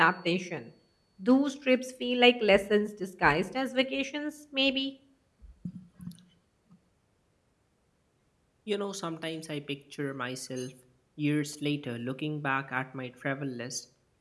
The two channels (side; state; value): both; identical; correlation 1.00